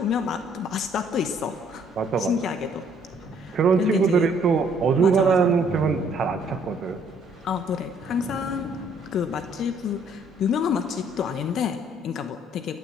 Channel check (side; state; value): both; normal; correlation 0.63